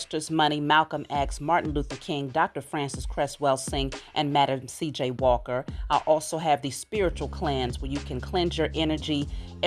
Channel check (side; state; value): both; identical; correlation 1.00